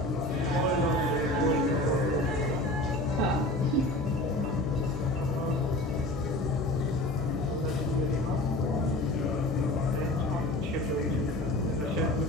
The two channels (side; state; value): left; noise; hum, 8 dB below the sound